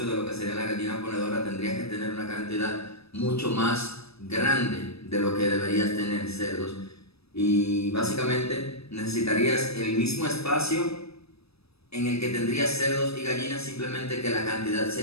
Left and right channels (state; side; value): late; right; 0.78 ms